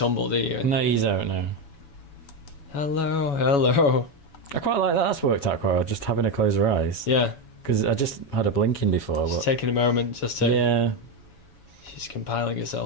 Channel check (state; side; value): late; right; 7.1 ms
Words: do you? No, you don't know. Hello, hello. I quite like that. That's worked out quite well. Just having her close her eyes. Yeah. Because I just had her blinking before. She's But taking a moment just to. yeah, She's compiling